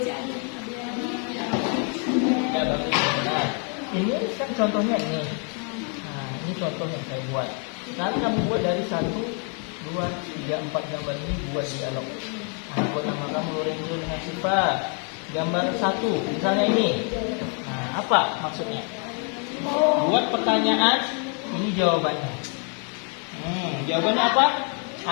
Ya, bagus. Nah, ini kan contohnya ini. Nah, ini contoh yang saya buat. Sekarang kamu buat dari 1, 2, 3, 4 gambar ini buat dialog. Nah, buat nama kamu Lorenzo dengan Siva. Gambar 1, misalnya ini. Nah, apa maksudnya? Buat pertanyaan, ini jawabannya. Jawabannya apa?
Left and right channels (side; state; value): right; quieter; 39.9 dB